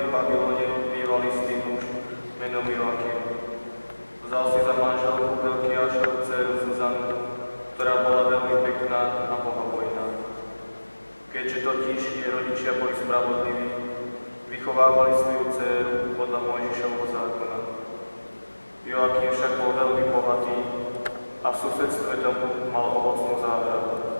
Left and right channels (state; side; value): inverted; both; correlation -1.00